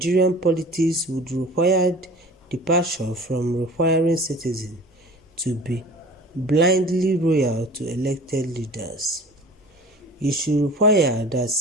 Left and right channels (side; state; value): both; normal; correlation 0.42